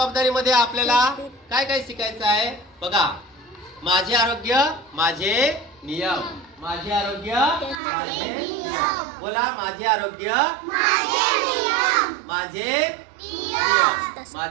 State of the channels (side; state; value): left; drops out; at 7.8 s